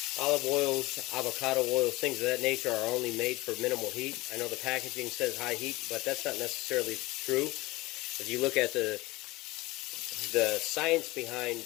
Olive oils, avocado oils, things of that nature are only made for minimal heat. I know the packaging says high heat, but that's not necessarily true. If you look at the science behind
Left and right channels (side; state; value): right; quieter; 20.7 dB